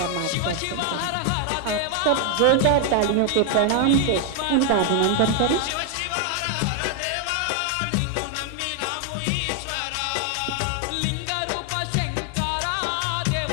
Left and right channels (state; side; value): different; both; correlation 0.00